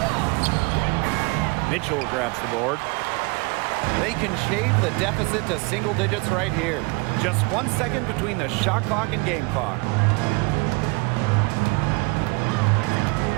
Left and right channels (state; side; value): quieter; left; 27.8 dB